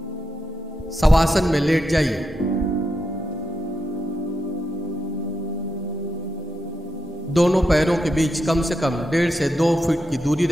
शवासन में लेट जाइए। दोनों पैरों के बीच कम से कम 1.5 से 2 फीट की दूरी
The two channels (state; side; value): normal; both; correlation 0.85